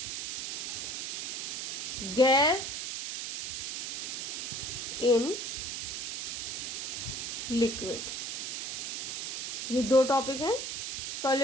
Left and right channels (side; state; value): right; noise; hiss, 3 dB below the sound